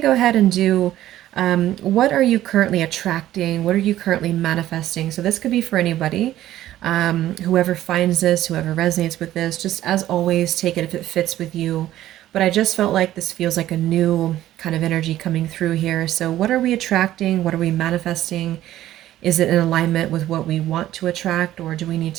to go ahead and do what are you currently attracting? What are you currently manifesting? So, this could be for anybody. Whoever finds this, whoever resonates with this, just as always, take it if it fits with you. But I just felt like this feels like a new kind of energy coming through here. So, what are we attracting? What are we manifesting? Is it in alignment with what we want to attract, or do we need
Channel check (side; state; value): left; quieter; 13.6 dB